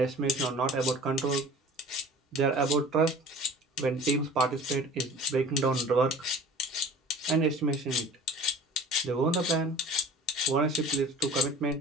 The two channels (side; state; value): both; normal; correlation 0.43